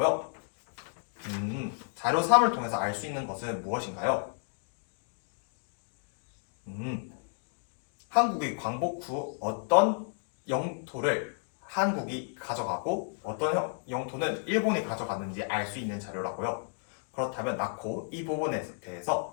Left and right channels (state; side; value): silent; right; 56 dB below the other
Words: 자료 3을 통해서 알 수 있는 것은 무엇인가요? 한국이 광복 후 어떤 영토를 한국이 가져가고 어떤 영토는 일본이 가져갔는지 알 수 있는 자료라고요. 그렇다면 나코 이 부분에